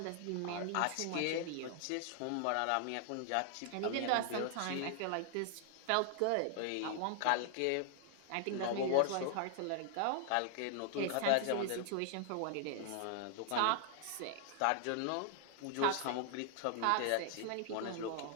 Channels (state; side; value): different; both; correlation 0.00